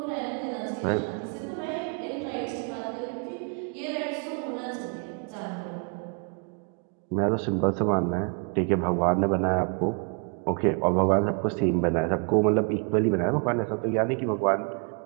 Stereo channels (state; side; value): quieter; left; 38.3 dB